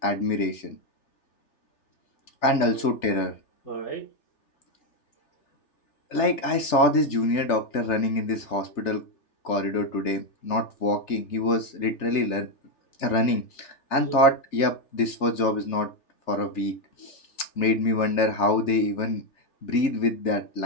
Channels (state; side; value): late; right; 3.4 ms